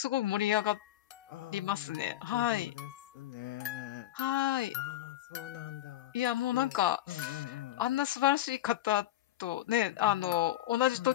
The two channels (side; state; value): right; quieter; 14.1 dB